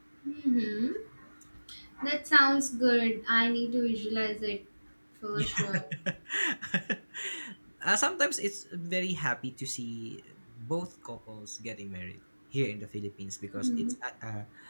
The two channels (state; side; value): inverted; both; correlation -1.00